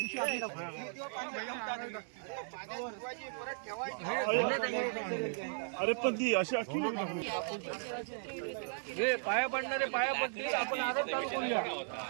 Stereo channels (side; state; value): left; silent; digital silence